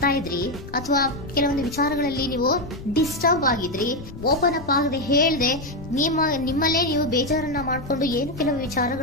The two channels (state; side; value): noise; left; rumble, 13 dB below the sound